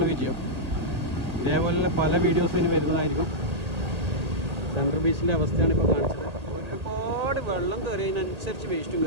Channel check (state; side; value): late; left; 1.8 ms